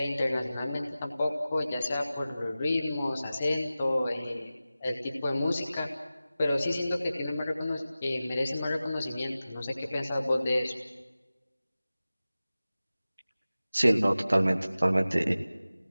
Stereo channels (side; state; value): both; inverted; correlation -0.96